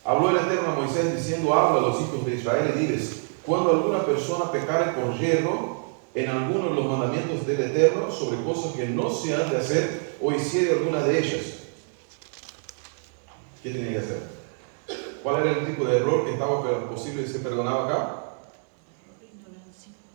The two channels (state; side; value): silent; left; 61 dB below the other